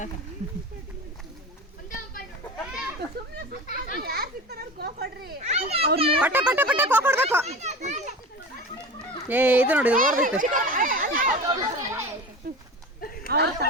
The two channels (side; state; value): both; normal; correlation 0.31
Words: ಪಟ್ಟ ಪಟ್ಟ ಪಟ್ಟ ಕೊಡ್ಬೇಕು. ಏ ಇದು ನೋಡಿ ಓಡ್ಬೇಕು.